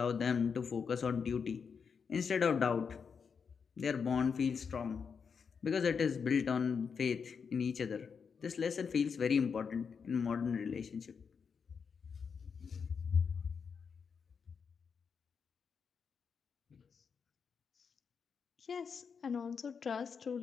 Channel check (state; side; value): quieter; right; 6.1 dB